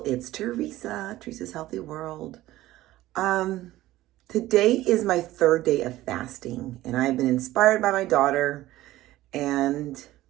Teresa's Healthy World. Today is my third day of fasting, and I've been inspired by my daughter. And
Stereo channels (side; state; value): left; quieter; 16.0 dB